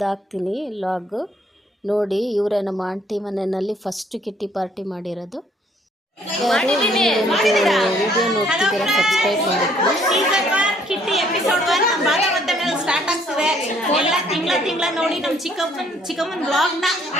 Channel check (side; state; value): both; normal; correlation 0.63